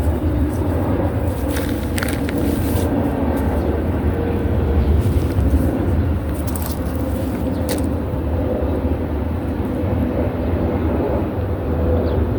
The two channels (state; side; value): identical; both; correlation 1.00